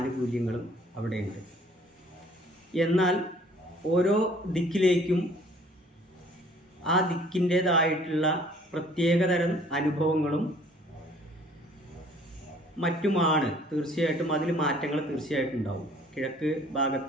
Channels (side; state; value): both; normal; correlation 0.56